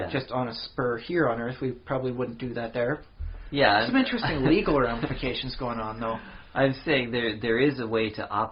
just on a spur here on Earth. We probably wouldn't do that there. Yeah, some interesting legal ramifications going on, though. I'm saying there is a way to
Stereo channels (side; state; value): both; identical; correlation 1.00